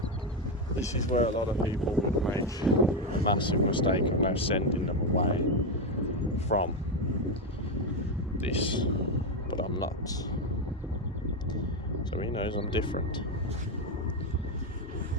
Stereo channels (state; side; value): normal; both; correlation 0.08